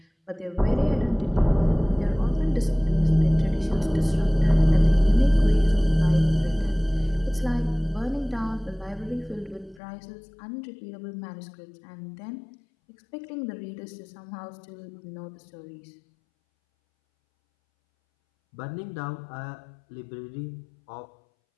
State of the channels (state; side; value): drops out; right; at 9.8 s